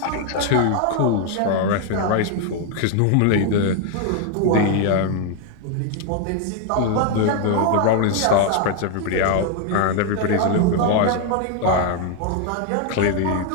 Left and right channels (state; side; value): different; both; correlation 0.00